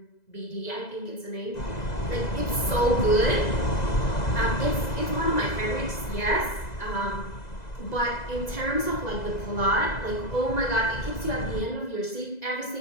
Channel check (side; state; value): right; late; 2.0 ms